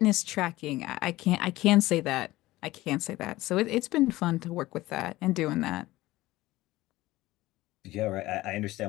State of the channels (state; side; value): quieter; right; 17.8 dB